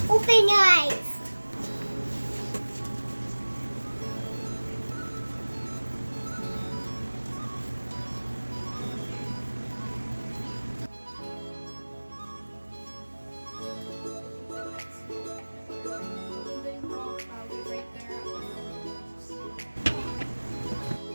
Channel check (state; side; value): inverted; both; correlation -1.00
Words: Open your eyes.